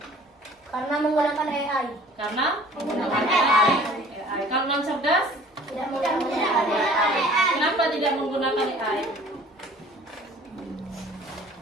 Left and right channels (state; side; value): normal; both; correlation 0.50